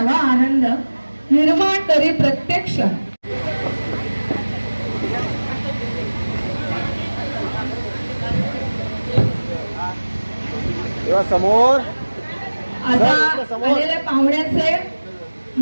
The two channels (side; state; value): both; inverted; correlation -1.00